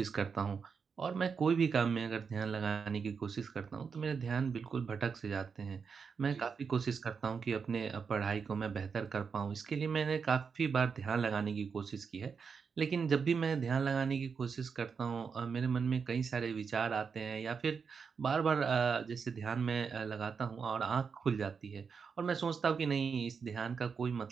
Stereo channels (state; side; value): quieter; left; 5.8 dB